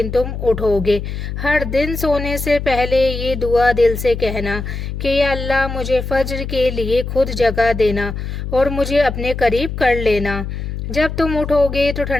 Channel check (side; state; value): left; noise; hum, 6 dB below the sound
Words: तुम उठोगे। हर दिन सोने से पहले ये दुआ दिल से कहना कि या अल्लाह मुझे फज्र के लिए खुद जगह देना और मुझे अपने करीब कर लेना। जब तुम उठोगे तो